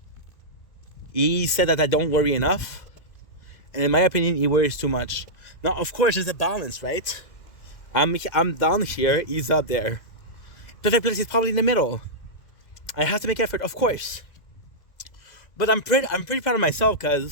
He said that I don't worry enough, and in my opinion, he worries too much. Now, of course, there's a balance, right? I'm down here, he's up there. Perfect place is probably in the middle. I have to make effort, of course. But I'm pretty proud of myself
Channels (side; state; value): right; late; 2.0 ms